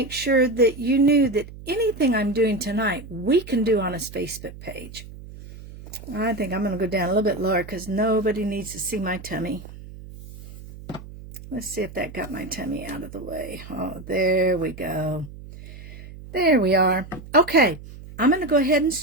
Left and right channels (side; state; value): right; noise; hum, 15 dB below the sound